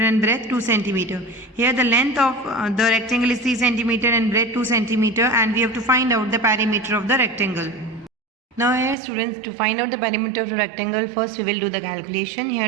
breadth 2 cm? Here the length of the rectangle is 3 cm and breadth 2 cm, and we have to find out the perimeter of the rectangle. Now here students, to find out the perimeter of the rectangle, first we will do the calculation. Here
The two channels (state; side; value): drops out; left; at 9.0 s